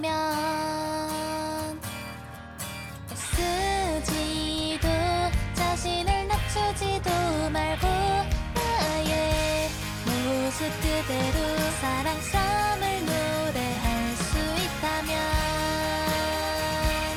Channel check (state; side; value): identical; both; correlation 1.00